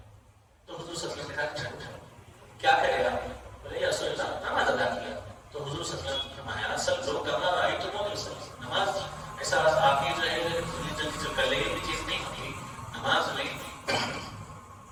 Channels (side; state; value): both; identical; correlation 1.00